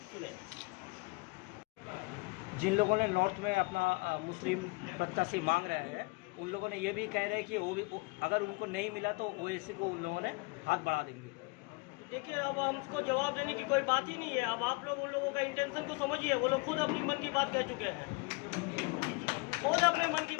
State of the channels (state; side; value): quieter; right; 27.4 dB